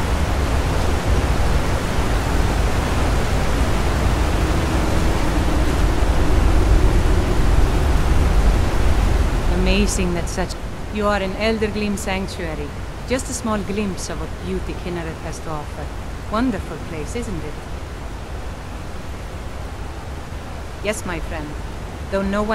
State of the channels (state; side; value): identical; both; correlation 1.00